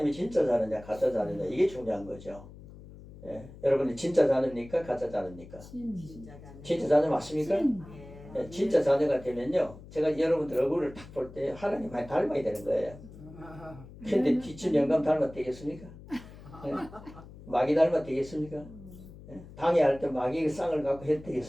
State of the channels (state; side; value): noise; left; hum, 17 dB below the sound